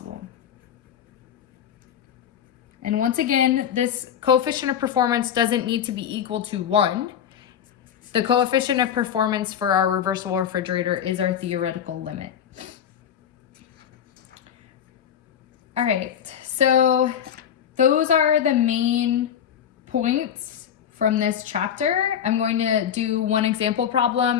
And once again, this coefficient of performance doesn't need to be equal to 1. The coefficient of performance for our reversible refrigerator is our theoretical limit. All right, so those are the main points from this chapter. I'm going to do one example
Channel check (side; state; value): right; quieter; 9.0 dB